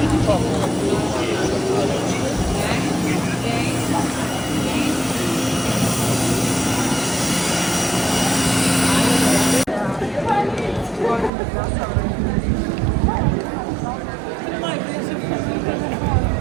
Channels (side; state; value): left; drops out; at 11.3 s